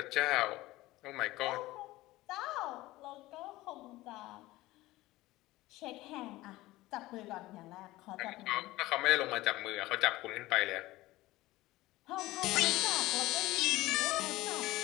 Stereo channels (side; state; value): right; quieter; 18.1 dB